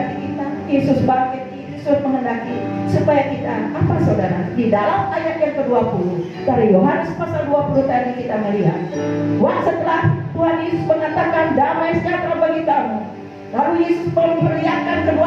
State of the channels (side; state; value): both; identical; correlation 1.00